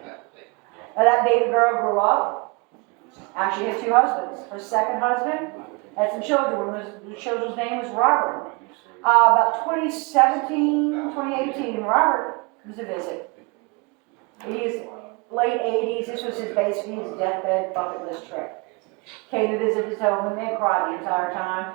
Now that baby girl grew up. Actually had 2 husbands. Her second husband had some children. One of the children's name was Robert. About 2018, Robert was a visit. He's late 80s. This was basically his deathbed bucket list trip. Came to visit his home and they cried the entire time.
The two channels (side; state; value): left; quieter; 29.8 dB